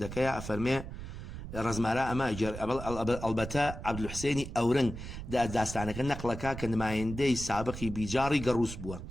أفرمي رزمارا أما أجر البتا عبد الحسيني أورن داستانك النقلكا كان ما يندي سابقي بجاري قروس بوا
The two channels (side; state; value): right; noise; rumble, 9 dB below the sound